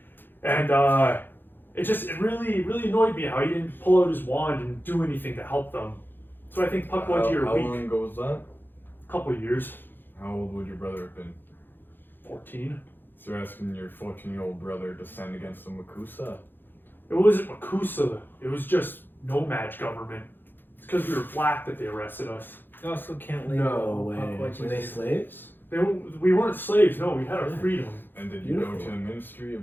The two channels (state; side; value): late; right; 0.096 ms